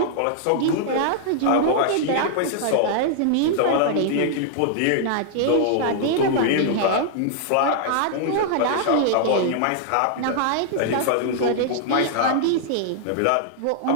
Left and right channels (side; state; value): both; different; correlation -0.01